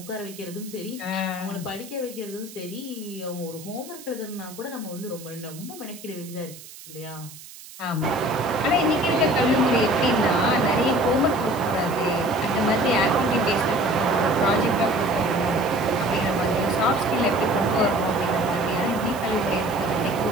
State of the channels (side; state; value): right; noise; hiss, 17 dB below the sound